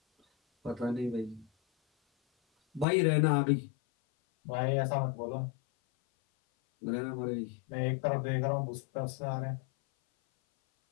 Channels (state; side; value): drops out; right; at 2.9 s